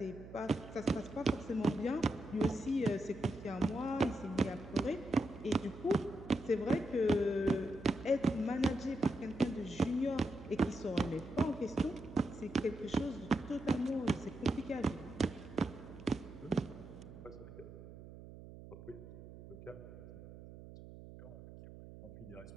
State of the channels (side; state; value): right; noise; hum, 15 dB below the sound